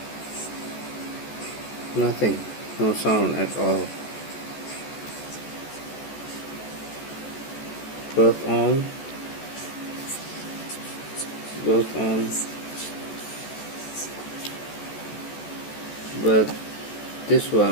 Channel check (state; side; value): late; right; 14 ms